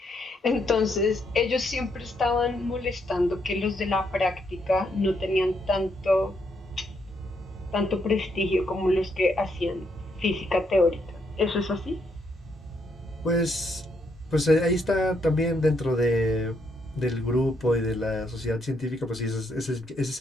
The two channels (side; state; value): both; normal; correlation 0.75